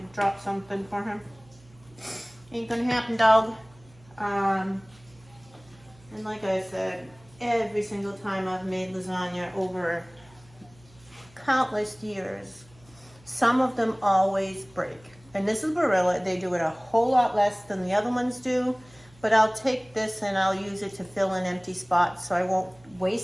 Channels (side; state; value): right; noise; hum, 27 dB below the sound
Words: drop something for him. Ain't gonna happen, dog. And like I said, every single time I've made lasagna over countless years, some of them always break. And this is Barilla. They do it a whole lot less than the other ones do. But I'll take this and I'll use it to fill in empty spots, so I won't